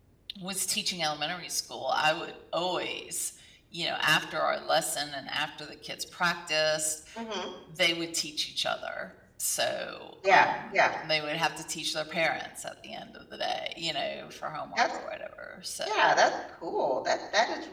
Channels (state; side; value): identical; both; correlation 1.00